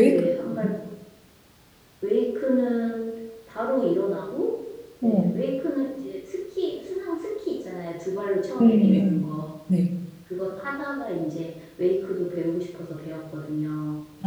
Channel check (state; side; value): identical; both; correlation 1.00